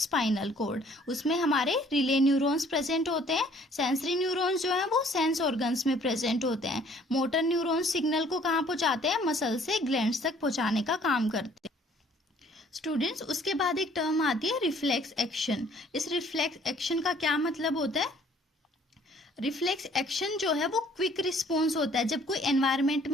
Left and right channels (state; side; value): normal; both; correlation 0.58